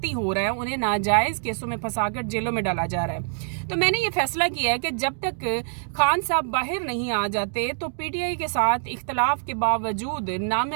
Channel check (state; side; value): silent; left; digital silence